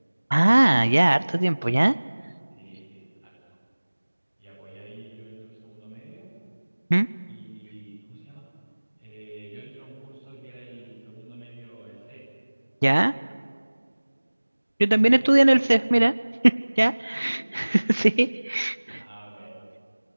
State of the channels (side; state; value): both; inverted; correlation -1.00